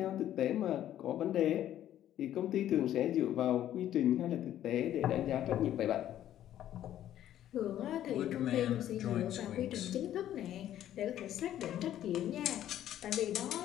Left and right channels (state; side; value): quieter; right; 11.9 dB